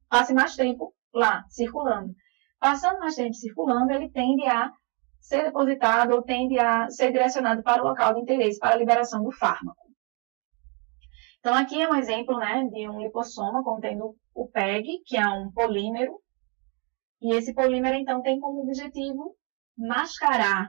mais tempo lá, circulando. Passando mais tempo circulando, ele tende a ser depositado ou tende a ser direcionado para o local de interesse, para a liberação do fármaco. Então, aqui é um exemplo de um lipossoma contendo o PEG, que é um polímero. E esse polímero, então, tem como objetivo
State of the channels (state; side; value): quieter; left; 35.2 dB